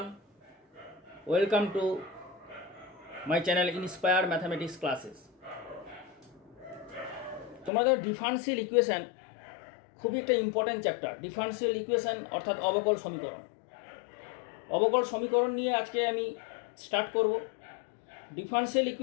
welcome to my channel Inspire Mathematics Classes. তোমাদের differential equation খুবই একটা important chapter. Differential equation অর্থাৎ অবকল সমীকরণ। অবকল সমীকরণ নিয়ে আজকে আমি স্টার্ট করব। ডিফারেন্সিয়াল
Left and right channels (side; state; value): right; drops out; at 7.7 s